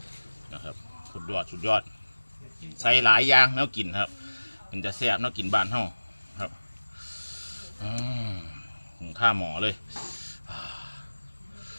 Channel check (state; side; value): inverted; both; correlation -1.00